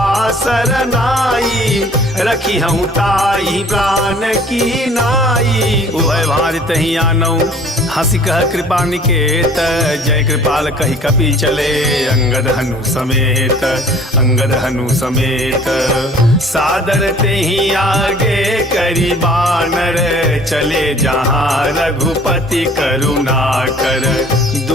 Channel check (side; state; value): both; normal; correlation 0.52